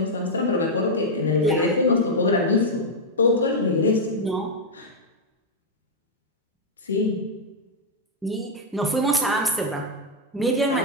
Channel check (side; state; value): both; normal; correlation -0.01